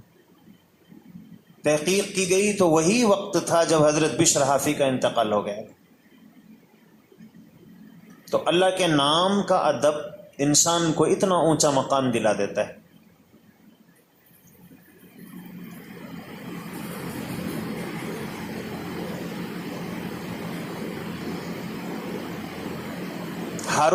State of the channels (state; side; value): identical; both; correlation 1.00